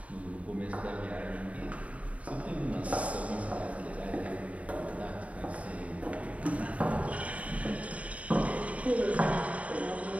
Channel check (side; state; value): left; late; 0.067 ms